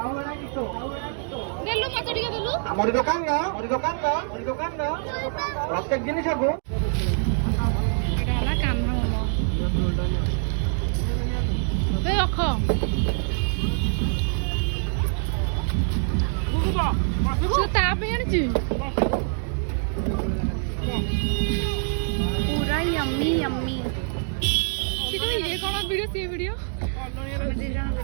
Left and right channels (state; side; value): silent; left; 56 dB below the other